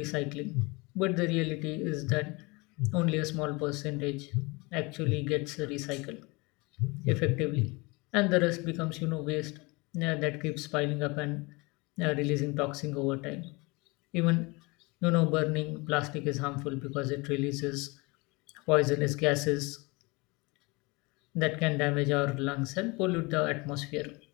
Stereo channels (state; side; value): quieter; right; 26.0 dB